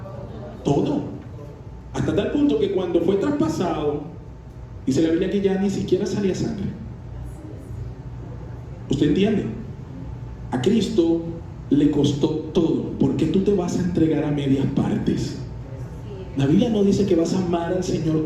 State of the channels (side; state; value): both; identical; correlation 1.00